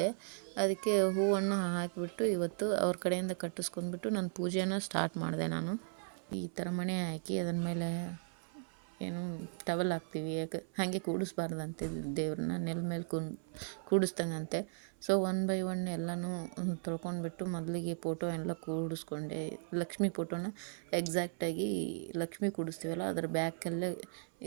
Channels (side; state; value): left; silent; 53 dB below the other